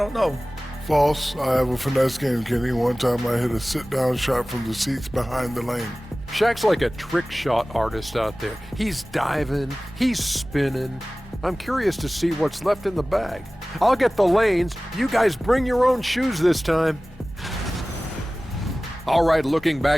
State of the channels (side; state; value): both; normal; correlation 0.97